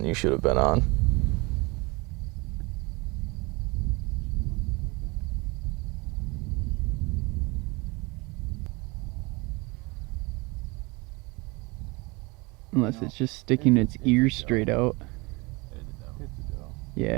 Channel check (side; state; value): left; quieter; 25.9 dB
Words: you should have been on. Unless it's just sticking its ears straight out. Yeah,